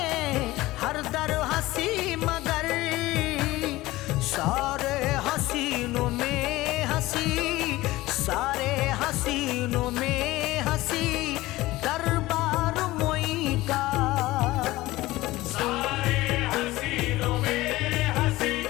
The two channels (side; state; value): right; quieter; 18.2 dB